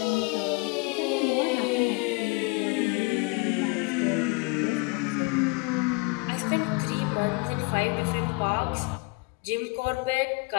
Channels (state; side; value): quieter; right; 28.7 dB